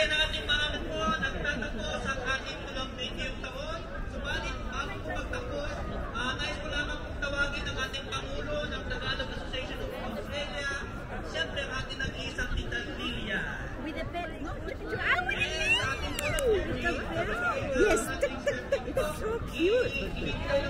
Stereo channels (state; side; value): identical; both; correlation 1.00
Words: ang ating mga po nagtatapos ang ating 20 taon. Subalit, bago po magtapos, nais ko lamang pong tawagin ang ating Pangulo ng Tagalog Association of Australia, siyempre ang ating nag-iisang Tita Lilia. With the bed. No, Yes, it's so cute. Ibigay